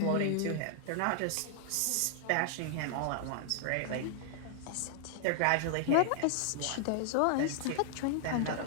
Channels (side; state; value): both; different; correlation 0.00